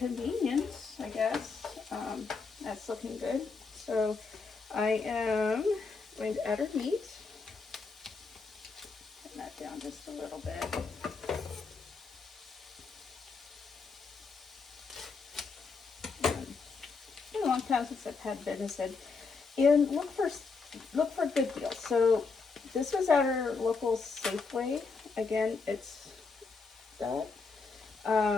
I guess. That's looking good. So I am going to add our meat. Turn that down just a little bit. It's been a long time since I've had venison, and look for good deals. So this was at our local Safeway. Again, it's that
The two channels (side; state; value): right; quieter; 4.6 dB